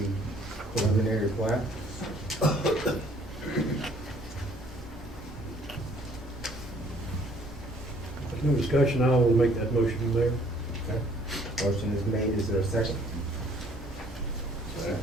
preliminary plat? discussion, I will make that motion, Mayor. Okay. Motion is made, is there a second?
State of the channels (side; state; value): both; normal; correlation 0.60